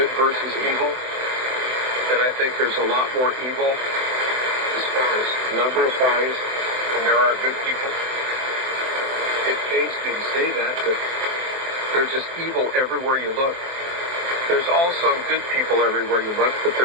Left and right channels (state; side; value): late; left; 24 ms